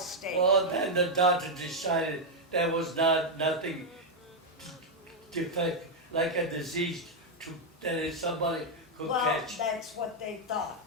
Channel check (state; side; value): normal; both; correlation -0.01